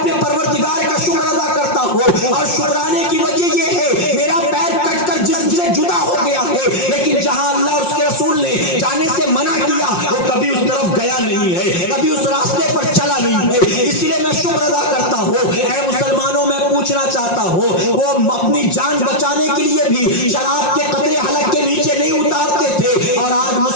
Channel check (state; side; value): late; right; 5.6 ms